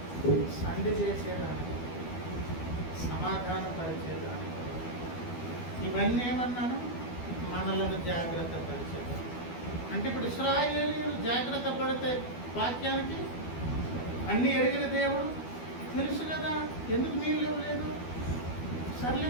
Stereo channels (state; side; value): late; right; 12 ms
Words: సంధి చేసేదానికి, సమాధానపరిచేదానికి. ఇవన్నీ ఏమన్నాను? మనలను జాగ్రత్త పరిచేదానికి. అంటే ఇప్పుడు ఇశ్రాయేలీయులు జాగ్రత్త పడితే వాక్యానికి అన్నీ ఎరిగిన దేవుడు తెలుసు కదా, ఎందుకు నీళ్ళు ఇవ్వలేదు, సర్లే